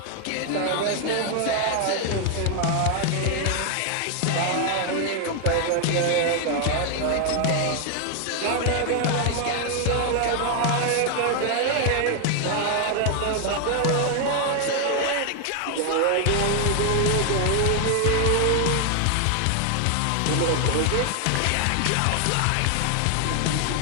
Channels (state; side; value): different; both; correlation 0.00